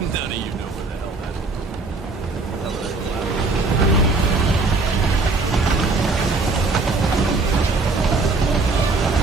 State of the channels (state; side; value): quieter; left; 3.7 dB